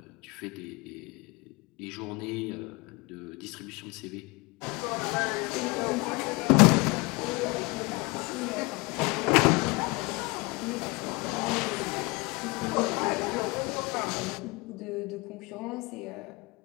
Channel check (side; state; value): right; quieter; 26.0 dB